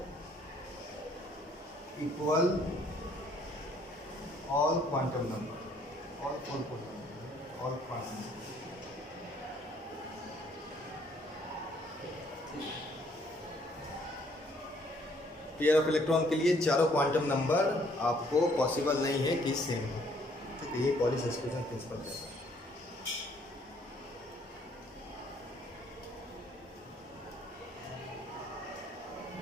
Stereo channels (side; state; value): both; normal; correlation 0.63